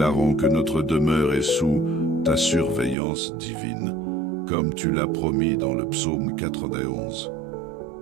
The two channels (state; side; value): drops out; left; at 3.0 s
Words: que notre demeure est sous ta surveillance divine, comme tu l'as promis dans le psaume 91.